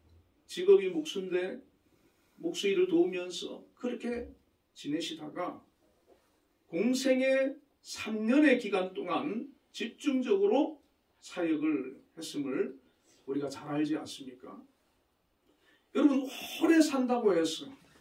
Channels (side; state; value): both; identical; correlation 1.00